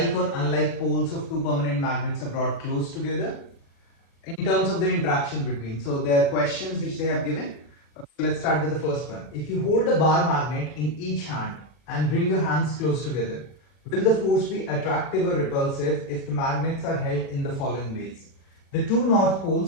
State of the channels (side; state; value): right; late; 40 ms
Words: or unlike poles of two permanent magnets are brought close together in terms of the interaction between. So there are questions which they have given. Let's start with the first one. If you hold a bar magnet in each hand and bring your hands close together, will the force be attractive or repulsive if the magnets are held in the following ways? The two north